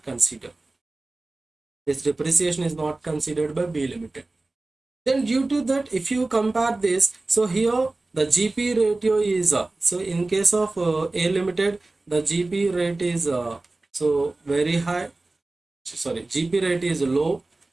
considered. This depreciation is not considered by B limited. Then due to that, if you compare this, so here the GP ratio is so in case of A limited, the GP rate is so very high. Sorry, GP rate is low,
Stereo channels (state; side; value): quieter; left; 3.1 dB